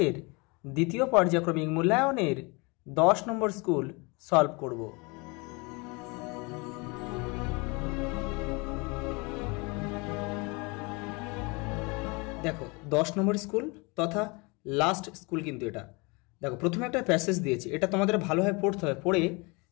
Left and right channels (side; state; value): right; quieter; 28.2 dB